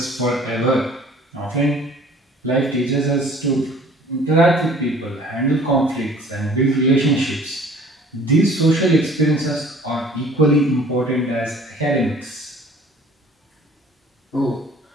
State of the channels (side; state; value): both; normal; correlation 0.51